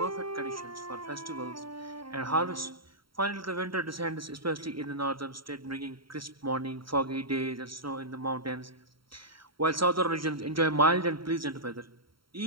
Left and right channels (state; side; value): late; left; 0.74 ms